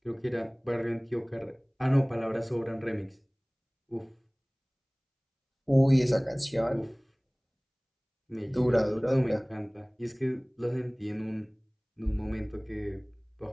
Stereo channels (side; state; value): both; identical; correlation 1.00